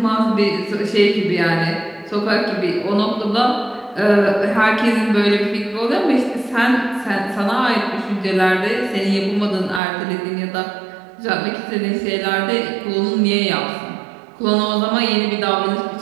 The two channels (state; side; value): drops out; left; at 9.8 s